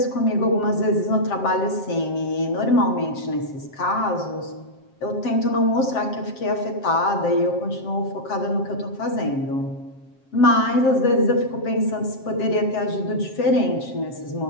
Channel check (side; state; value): right; late; 7.5 ms